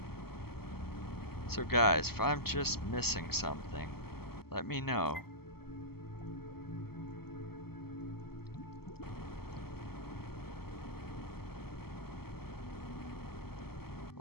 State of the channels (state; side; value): late; right; 0.95 ms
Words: So guys, if I'm just missing something, let me know.